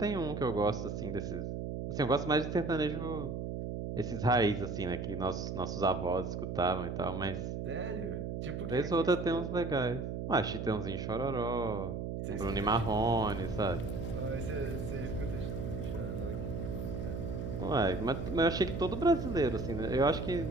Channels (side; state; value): right; noise; hum, 4 dB below the sound